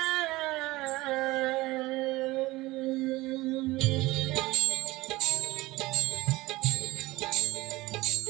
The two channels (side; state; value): left; quieter; 19.9 dB